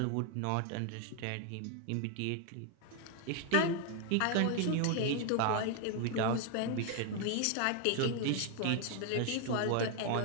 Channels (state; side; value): different; both; correlation 0.01